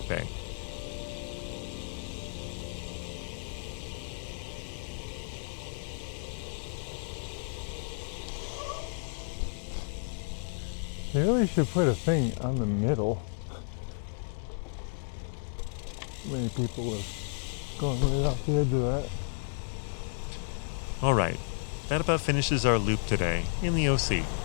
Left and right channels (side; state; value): right; silent; digital silence